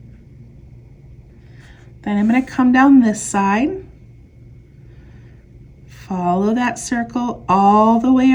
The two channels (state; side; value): identical; both; correlation 1.00